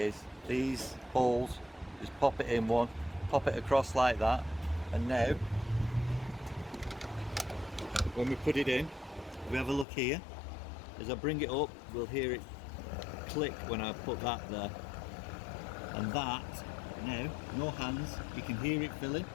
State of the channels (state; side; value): drops out; right; at 9.9 s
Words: these holes, just pop it in one, pop it across like that, and now when we put it in, we have a look here. As I bring it up, we'll hear it click when I put that there, and that now, no hands, you can hear it filling.